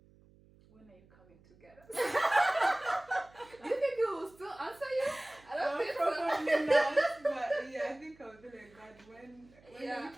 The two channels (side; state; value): right; noise; hum, 27 dB below the sound